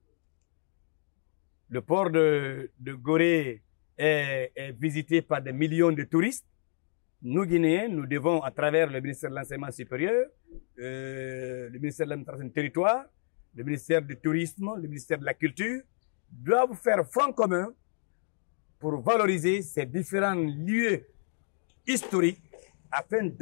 Le port de Gorée est visité par des millions de touristes. Nous, Guinéens, nous devons, à travers le ministère de l'Enseignement supérieur, le ministère de l'Administration du territoire, le ministère du Tourisme, le ministère de la Culture, doivent faire front commun pour valoriser ces différents lieux historiques afin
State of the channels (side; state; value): right; silent; digital silence